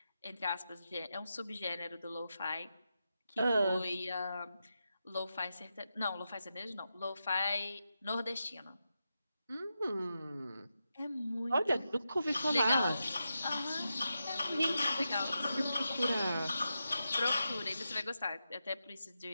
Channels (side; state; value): both; inverted; correlation -0.88